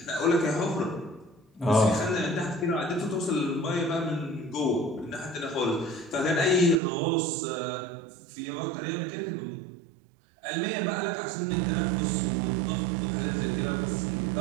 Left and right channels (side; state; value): left; drops out; at 6.8 s